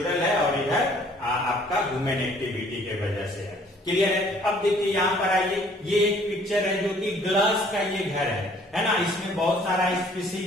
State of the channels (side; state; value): both; normal; correlation 0.58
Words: है और इधर आपका ह्यूमन एक्टिविटी के वजह से है। क्लियर है। अब देखिए यहाँ पर आइए, ये एक पिक्चर है जो कि ग्लास का ये घर है ना। इसमें बहुत सारा